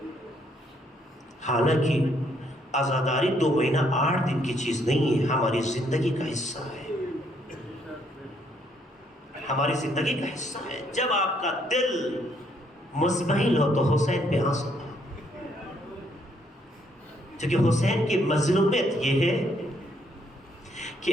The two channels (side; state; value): both; normal; correlation 0.70